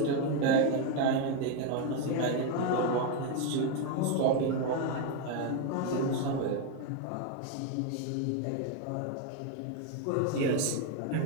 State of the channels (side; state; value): both; different; correlation 0.01